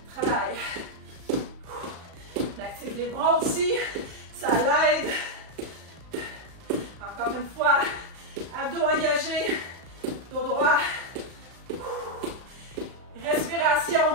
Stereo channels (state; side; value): late; left; 35 ms